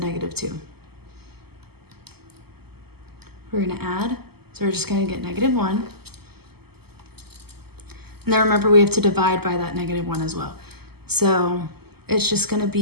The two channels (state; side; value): late; left; 0.96 ms